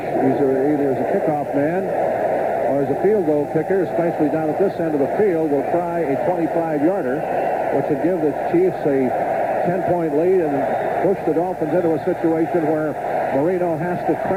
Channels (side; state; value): both; identical; correlation 1.00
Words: either as a kickoff man or as a field goal kicker, especially down at this end of the field, will try a 25-yarder, which would give the Chiefs a 10-point lead and push the Dolphins into a situation where Marino has to